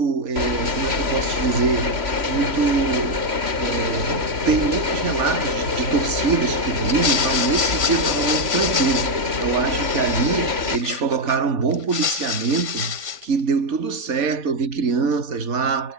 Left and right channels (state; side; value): late; left; 3.5 ms